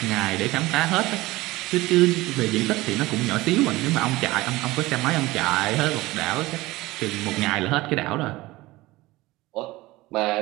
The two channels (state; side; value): quieter; left; 19.5 dB